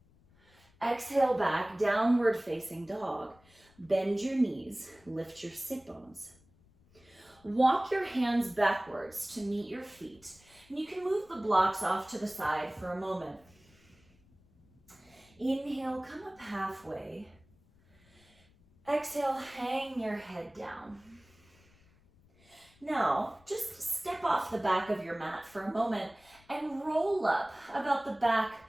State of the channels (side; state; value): left; noise; rumble, 30 dB below the sound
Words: Exhale back, downward facing dog. Bend your knees, lift your sit bones. Walk your hands backwards to meet your feet. And you can move the blocks off to the side for a moment. Inhale, come up halfway. Exhale, hang your head down. Now, just step off the back of your mat for a moment and roll up about the back